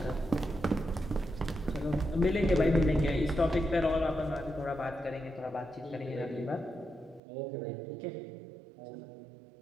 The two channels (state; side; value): drops out; left; at 7.2 s